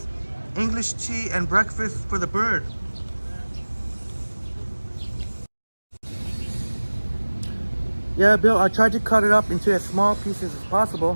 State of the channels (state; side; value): inverted; both; correlation -1.00